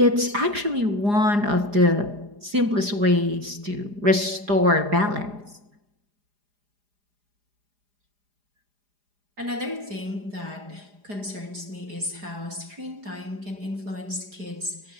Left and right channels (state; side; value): late; left; 4.9 ms